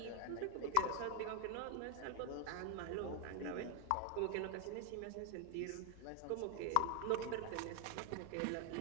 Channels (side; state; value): both; different; correlation 0.00